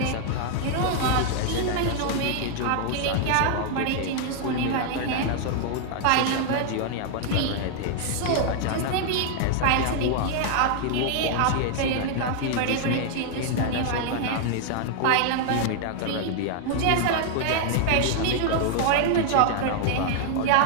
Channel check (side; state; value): both; different; correlation 0.00